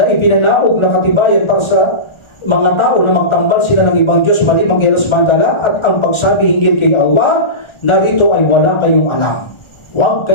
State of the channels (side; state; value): right; late; 1.4 ms